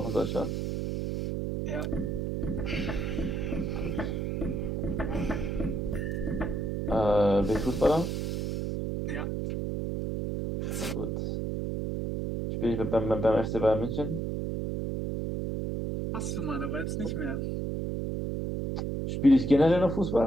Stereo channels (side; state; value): right; noise; hum, 1 dB below the sound